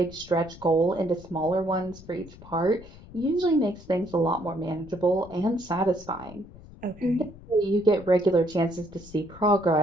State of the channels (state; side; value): noise; left; rumble, 19 dB below the sound